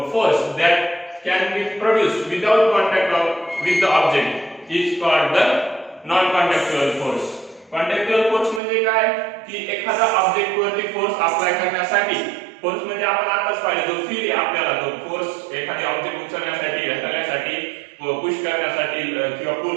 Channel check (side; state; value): left; drops out; at 8.6 s